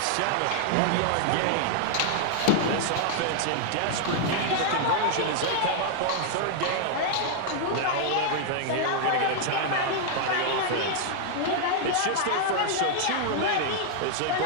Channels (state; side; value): different; both; correlation 0.00